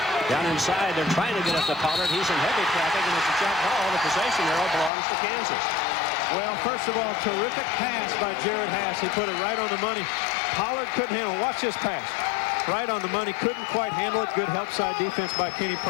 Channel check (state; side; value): drops out; right; at 4.9 s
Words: Down inside, they're trying to get up to Pollard. He's in heavy traffic, and it's a jump ball. The possession arrow belongs to Kansas. Well, first of all, terrific pass by Jared Haas. He put it right on the money. Pollard couldn't handle it. Watch this pass. Right on the money. Couldn't quite handle it. Good help side defense by Kenny